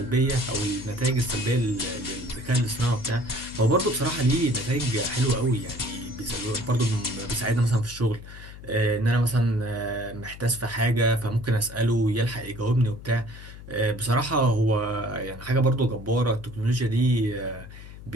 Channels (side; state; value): left; noise; hum, 15 dB below the sound